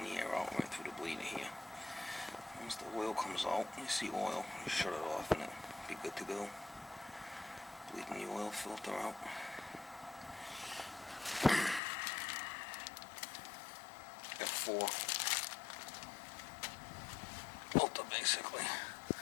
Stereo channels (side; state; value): right; drops out; at 11.8 s